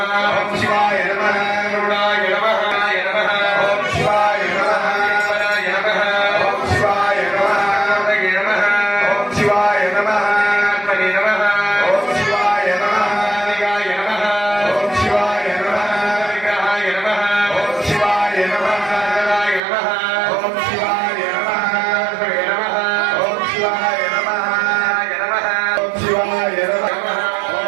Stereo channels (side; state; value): left; drops out; at 19.6 s